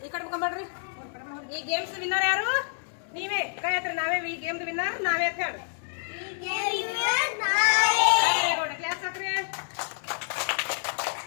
ಈ ಕಡೆ ಮುಖಂಬಡ್ರಿ. ಈ ಗೇಮ್ಸ್ ವಿನ್ನರ್ ಯಾರು? ನೀವೇ. ಕೈ ಹತ್ರ ನಾವೇ ಈ ಗೇಮ್ದು ವಿನ್ನರ್ ನಾವೇ ಅಂತ ಹೇಳಿ. ಕ್ಲಾಸ್ ಹಾಕ್ರಿ.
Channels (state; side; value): silent; right; digital silence